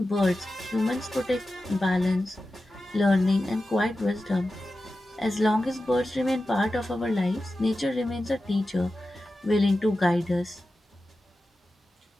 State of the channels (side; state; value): both; normal; correlation 0.93